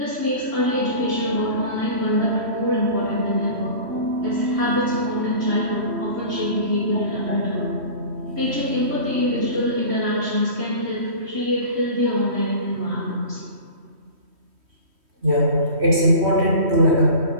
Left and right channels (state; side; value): late; left; 3.1 ms